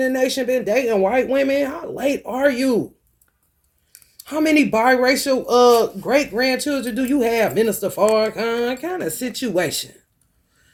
nation been dating white women? How late are you? How many biracial great-grandchildren do you have, Minister Farrakhan? Kind of situation.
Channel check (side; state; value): both; identical; correlation 1.00